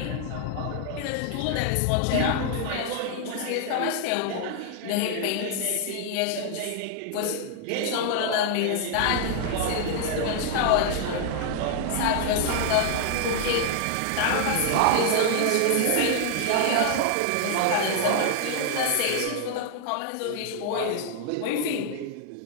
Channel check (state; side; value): different; both; correlation 0.00